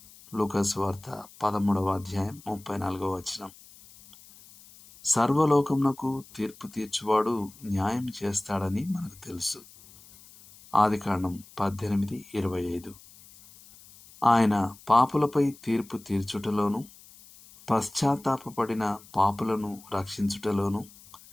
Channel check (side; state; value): left; noise; hiss, 22 dB below the sound